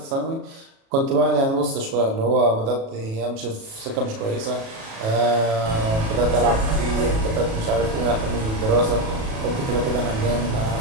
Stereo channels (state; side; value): late; left; 37 ms